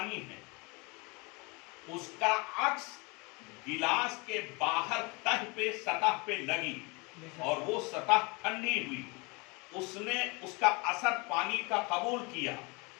ہے، اس کا عکس گلاس کے باہر تہ پہ سطح پہ لگی اور وہ سطح ٹھنڈی ہوئی، اس نے اس کا اثر پانی کا قبول کیا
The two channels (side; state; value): right; quieter; 28.4 dB